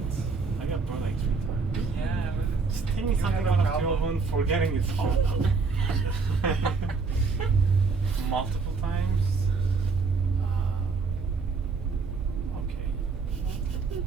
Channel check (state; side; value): quieter; left; 4.6 dB